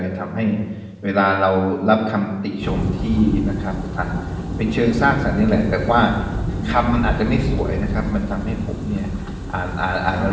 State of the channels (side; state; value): both; identical; correlation 1.00